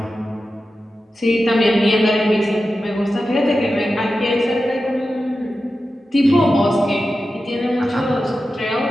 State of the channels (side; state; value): both; normal; correlation 0.92